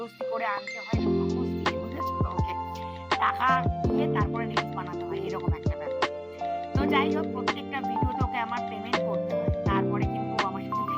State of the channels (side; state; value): both; identical; correlation 1.00